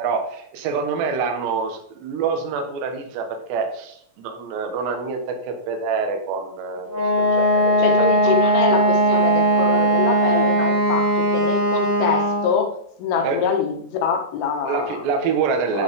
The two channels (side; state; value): both; normal; correlation -0.19